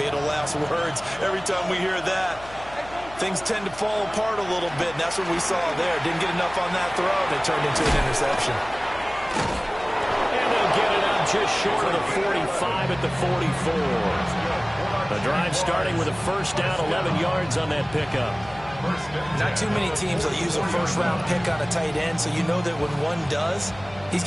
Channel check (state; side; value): noise; left; hum, 19 dB below the sound